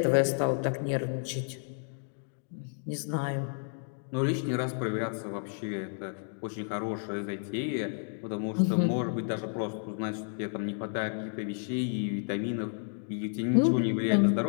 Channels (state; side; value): silent; right; 57 dB below the other